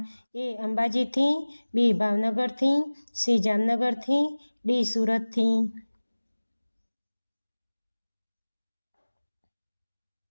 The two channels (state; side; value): inverted; both; correlation -1.00